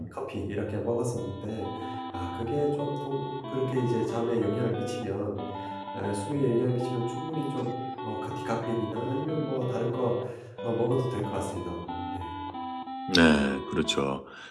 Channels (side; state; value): both; identical; correlation 1.00